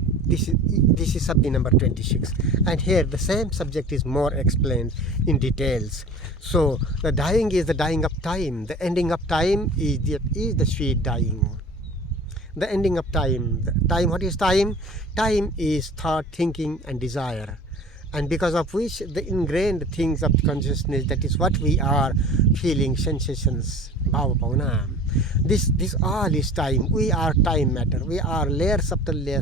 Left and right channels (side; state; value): both; normal; correlation 0.41